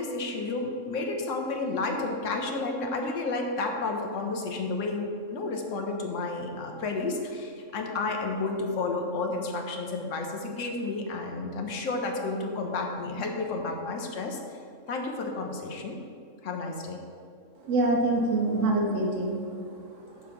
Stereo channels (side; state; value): left; late; 3.6 ms